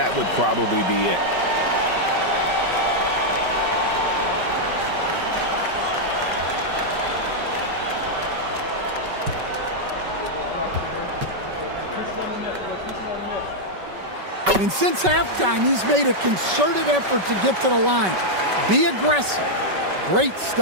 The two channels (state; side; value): late; left; 5.3 ms